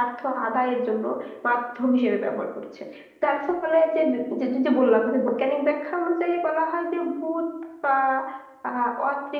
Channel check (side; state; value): both; identical; correlation 1.00